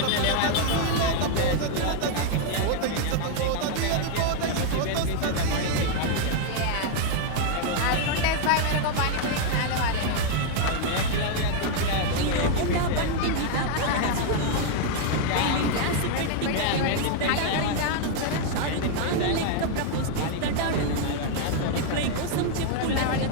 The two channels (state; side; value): different; both; correlation 0.00